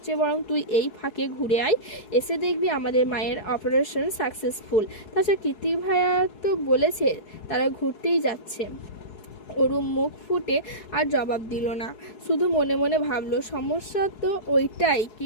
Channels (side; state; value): right; late; 4.7 ms